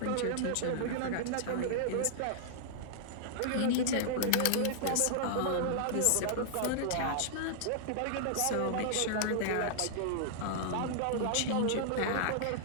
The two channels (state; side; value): different; both; correlation -0.01